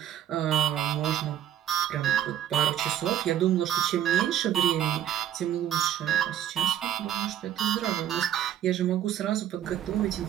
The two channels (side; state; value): left; quieter; 10.8 dB